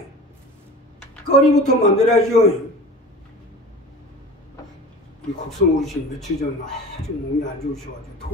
거리부터 만들어야죠. 우리 곡성 어르신 며칠 전 아주 몸이 안 좋으셔가지고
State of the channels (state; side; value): normal; both; correlation 0.37